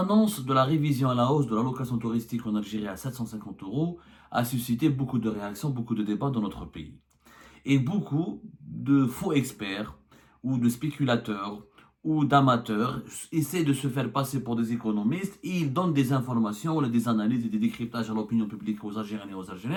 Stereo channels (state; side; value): identical; both; correlation 1.00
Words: de la révision à la hausse de l'allocation touristique en Algérie à 750 euros a suscité beaucoup de réactions, beaucoup de débats dans notre pays. Et beaucoup de faux experts ou de spéculateurs ou d'amateurs essaient de se faire passer pour des économistes et ils donnent des informations, des analyses et des décryptages à l'opinion publique aux Algériennes et aux